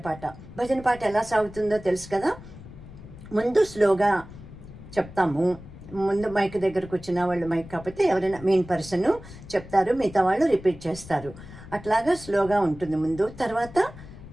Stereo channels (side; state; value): left; noise; rumble, 16 dB below the sound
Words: పాట ఎలా సాగుతుందో తెలుసు కదా. ముందు స్లోగా చెప్తాము. ముందు మైక్ దగ్గరకు వచ్చిన వాళ్ళు, మైక్ కాకపోతే ఎవరైనా మెయిన్ పర్సన్ చెప్తారు, మిగతా వాళ్ళు రిపీట్ చేస్తారు. అట్లాగా స్లోగా ఉంటుంది ముందు. తర్వాత